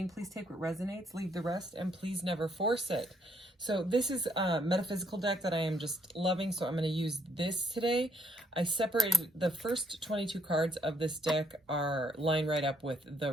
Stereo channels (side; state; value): both; normal; correlation 0.70